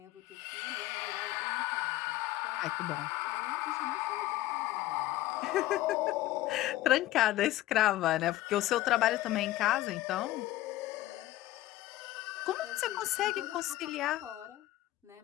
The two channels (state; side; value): quieter; right; 15.7 dB